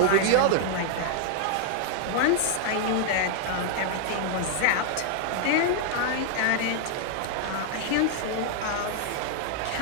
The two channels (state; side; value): different; both; correlation 0.00